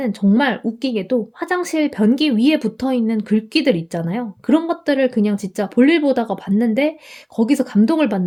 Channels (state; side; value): identical; both; correlation 1.00